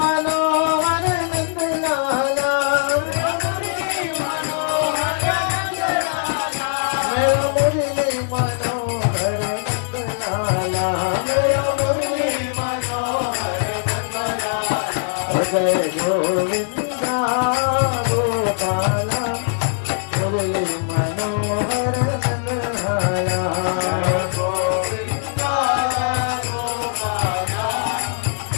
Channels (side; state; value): right; silent; 65 dB below the other